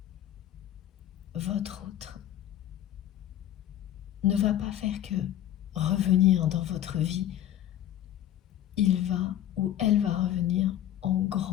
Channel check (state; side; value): quieter; right; 11.9 dB